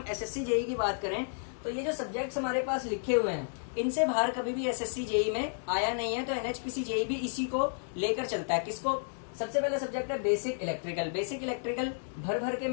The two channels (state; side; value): silent; right; digital silence